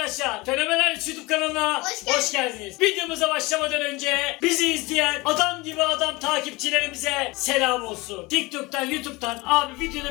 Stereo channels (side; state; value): right; quieter; 23.4 dB